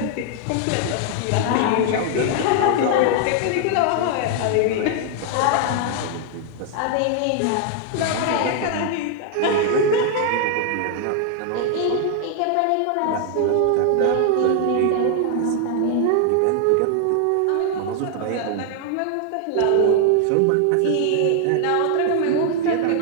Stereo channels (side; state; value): both; different; correlation 0.00